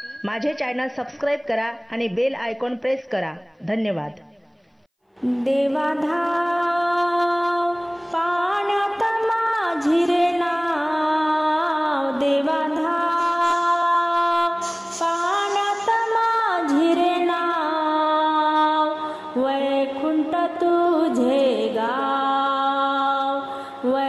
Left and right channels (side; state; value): both; identical; correlation 1.00